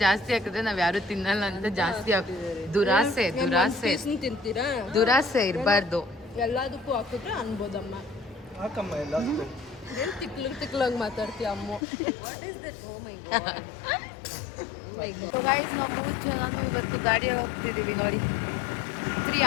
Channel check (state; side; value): drops out; right; at 11.8 s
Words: ಜಾಸ್ತಿ ಹಾಕಿದ್ರೆ ನಾವ್ ಯಾರು ತಿನ್ನಲ್ಲ ಅಂತ ಜಾಸ್ತಿ ದುರಾಸೆ ತಿಂತೀರಾ ದುರಾಸೆ ಇರಬಾರ್ದು ಎಲ್ಲದಕ್ಕೂ ಹಾಕಿದ್ರೆ ಅನ್ಬೋದಮ್ಮ ಹಾಕಮ್ಮ ಎಲ್ಲ ಏನು ತಿಕ್ಲಂಗೆ ಮಾತಾಡ್ತೀಯ ಅಮ್ಮ what is that oh my God guys ನಾವು 3 ಜನನು ಇವತ್ತು ಗಾಡಿ ಹೋಗ್ತಿದೀವಿ ನೋಡಿ 3